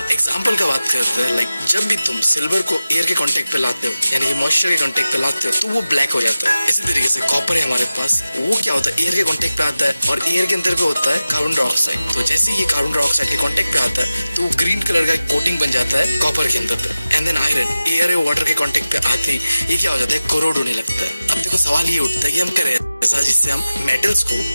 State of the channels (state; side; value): inverted; both; correlation -0.95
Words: एग्जाम्पल का बात करते हैं, लाइक जब भी तुम सिल्वर को एयर के कॉन्टेक्ट पे लाते हो यानी कि मॉइस्चर के कॉन्टेक्ट पे लाते हो तो वो ब्लैक हो जाता है। इसी तरीके से कॉपर है हमारे पास, वो क्या होता है एयर के कॉन्टेक्ट पे आता है और एयर के अंदर पे होता है कार्बन डाइऑक्साइड। तो जैसे ये कार्बन डाइऑक्साइड के कांटेक्ट पे आता है तो ग्रीन कलर का कोटिंग बन जाता है कॉपर के अंदर पे। एंड देन आयरन एयर और वाटर के कांटेक्ट पे आते ही ये क्या हो जाता है, कोरोड होने लगता है। अब देखो सवाल ये उठता है कि हम करें ऐसा जिससे हम मेटल्स को